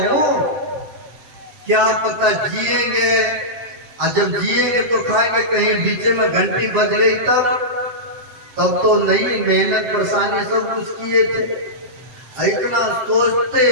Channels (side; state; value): left; late; 7.7 ms